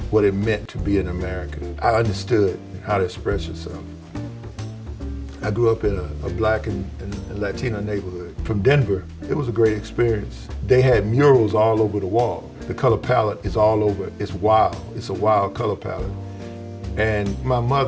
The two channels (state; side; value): identical; both; correlation 1.00